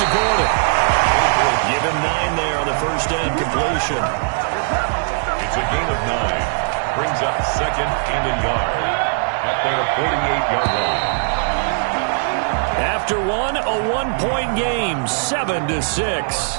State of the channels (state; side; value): silent; left; digital silence